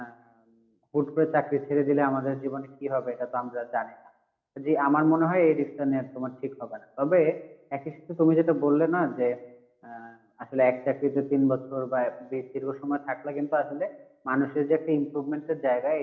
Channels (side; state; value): both; identical; correlation 1.00